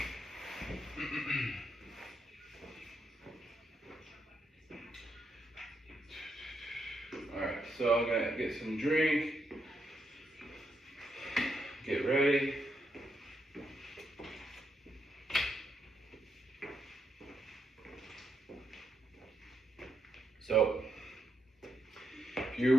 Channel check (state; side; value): normal; both; correlation 0.81